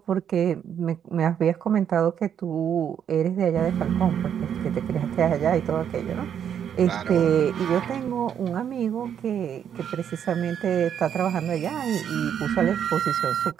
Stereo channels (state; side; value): quieter; left; 8.7 dB